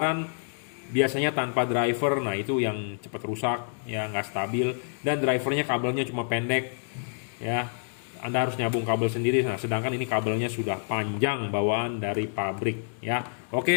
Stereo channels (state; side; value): silent; right; 58 dB below the other